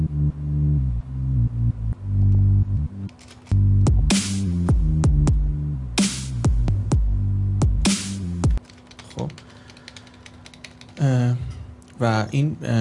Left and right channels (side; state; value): both; identical; correlation 1.00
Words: خب و این